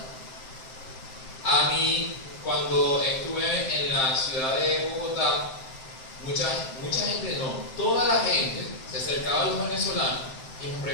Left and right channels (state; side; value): late; right; 7.7 ms